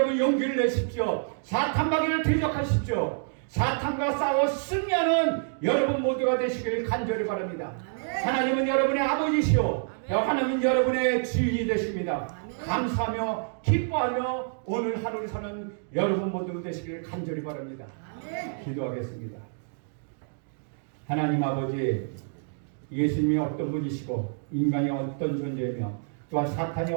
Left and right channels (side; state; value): left; silent; digital silence